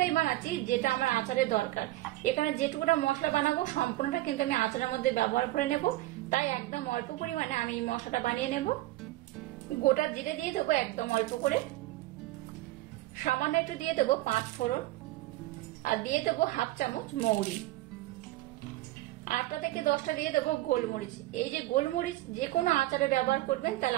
বানাচ্ছি যেটা আমার আচারের দরকার। এখানে যেটুকুটা মশলা বানাবো সম্পূর্ণটা কিন্তু আমি আচারের মধ্যে ব্যবহার করে নেব, তাই একদম অল্প পরিমাণে আমি এই মশলাটা বানিয়ে নেব। গোটা জিরে দিয়ে দেবো একদম অল্প করে, সামান্য একটু দিয়ে দেবো 5 ফোড়ন, আর দিয়ে দেবো হাফ চামচ মৌরি। 8টা থেকে 10টা দিয়ে দেবো গোলমরিচ। এই যে গোলমরিচ যে কোনো আচারে ব্যবহার করবেন,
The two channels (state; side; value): quieter; left; 17.5 dB